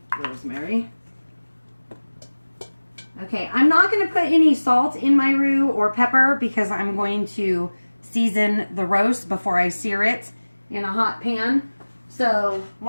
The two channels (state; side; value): inverted; both; correlation -1.00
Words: rosemary. Okay, I'm not going to put any salt in my roux or pepper because I'm going to season the roast before I sear it in a hot pan. So